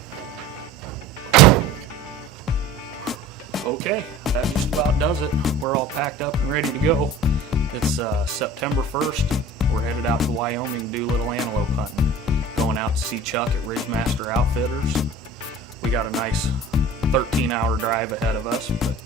Okay, that just about does it. We're all packed up and ready to go. It's September 1st. We're headed out to Wyoming to do a little antelope hunting. Going out to see Chuck at Ridgemaster Outfitters. We got a nice 13-hour drive ahead of us,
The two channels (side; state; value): both; normal; correlation 0.41